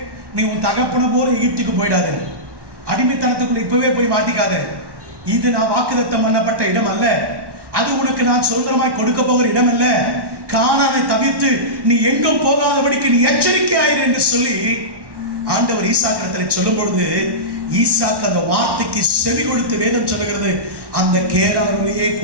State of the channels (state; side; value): late; left; 1.1 ms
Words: நீ உன் தகப்பன போல எகிப்துக்கு போயிடாது. அடிமைத்தனத்துக்குள்ள இப்பவே போய் மாட்டிக்காத. இது நான் வாக்குத்தத்தம் பண்ணப்பட்ட இடம் அல்ல. அது உனக்கு நான் சுதந்திரமாய் கொடுக்க போகிற இடம் அல்ல. கானானை தவிர்த்து நீ எங்கும் போகாதபடிக்கு நீ எச்சரிக்கையாயிரு என்று சொல்லி ஆண்டவர் ஈசாக்கிடத்துல சொல்லும் பொழுது, ஈசாக்கு அந்த வார்த்தைக்கு செவி கொடுத்து வேதம் சொல்லுகிறது, அந்த கேராரிலேயே